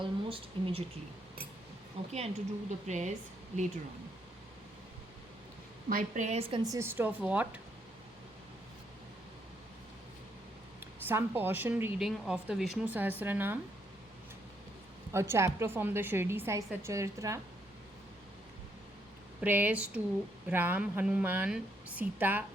immediately. Okay, and to do the prayers later on. My prayers consist of what? Some portion reading of the Vishnu Sahasranam, a chapter from the Shirdi Sai Satcharitra, prayers to Ram, Hanuman, Sita,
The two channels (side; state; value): both; normal; correlation 0.74